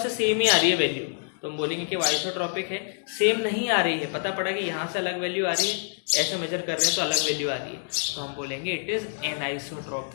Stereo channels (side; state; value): right; silent; digital silence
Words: से सेम ही आ रही है वैल्यू, तो हम बोलेंगे कि वो आइसोट्रोपिक है। सेम नहीं आ रही है, पता पड़ा कि यहाँ से अलग वैल्यू आ रही है, ऐसे मेजर कर रहे हैं तो अलग वैल्यू आ रही है, तो हम बोलेंगे it is